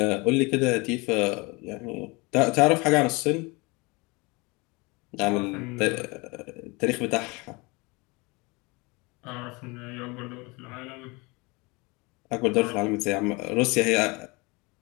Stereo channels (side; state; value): right; quieter; 26.5 dB